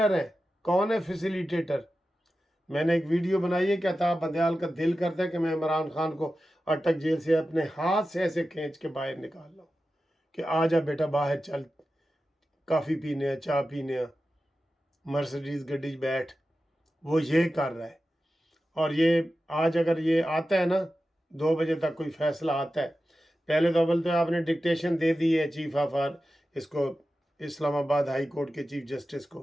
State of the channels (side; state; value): both; normal; correlation 0.93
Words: ہیں۔ کون ہے فیسیلیٹیٹر؟ میں نے ایک ویڈیو بنائی ہے کہ عطا بندیال کا دل کرتا ہے کہ میں عمران خان کو اٹک جیل سے اپنے ہاتھ سے ایسے کھینچ کے باہر نکال لاؤں کہ آ جا بیٹا باہر چل، کافی پینے ہیں، چائے پینے ہیں، مرسڈیز گڈی بیٹھ۔ وہ یہ کر رہا ہے۔ اور یہ آج اگر یہ آتا ہے نا 2 بجے تک کوئی فیصلہ آتا ہے، پہلے تو اول تو آپ نے ڈکٹیشن دے دی ہے چیف آف اس کو، اسلام آباد ہائی کورٹ کے چیف جسٹس